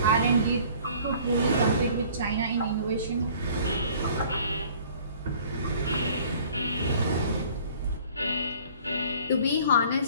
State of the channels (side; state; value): both; inverted; correlation -0.52